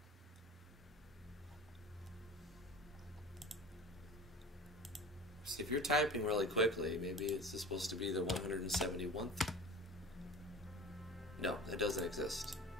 See, if you're typing really quickly, maybe it's supposed to be the 171th. No, it doesn't exist.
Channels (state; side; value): normal; both; correlation 0.38